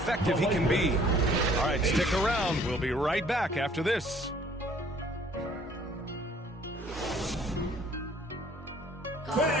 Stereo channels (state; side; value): normal; both; correlation 0.57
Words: he can be. All right, stick around. We'll be right back after this.